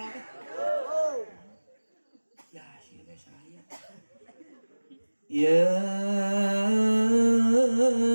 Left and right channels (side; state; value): both; inverted; correlation -1.00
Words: teh? Yasin we saayat. Yasin.